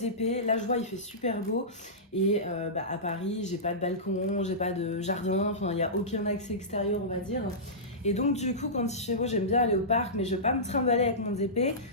Là, je vois, il fait super beau. Et à Paris, j'ai pas de balcon, j'ai pas de jardin, enfin, il n'y a aucun accès extérieur, on va dire. Et donc, du coup, quand il fait beau, j'aime bien aller au parc, mais je vais pas me trimballer avec mon DP.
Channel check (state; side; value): normal; both; correlation -0.18